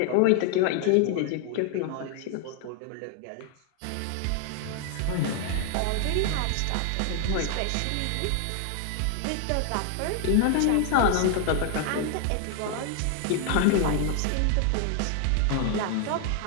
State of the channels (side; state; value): both; different; correlation 0.00